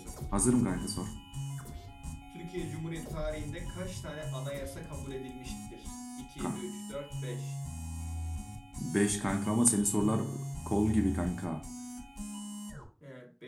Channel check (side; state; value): both; identical; correlation 1.00